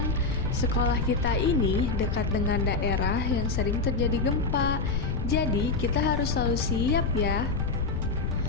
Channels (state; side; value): noise; left; rumble, 1 dB below the sound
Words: Sekolah kita ini dekat dengan daerah yang sering terjadi gempa. Jadi kita harus selalu siap ya.